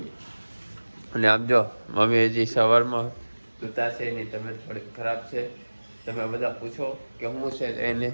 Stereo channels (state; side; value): inverted; both; correlation -1.00